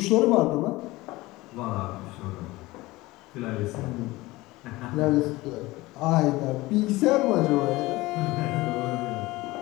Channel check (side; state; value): right; quieter; 19.9 dB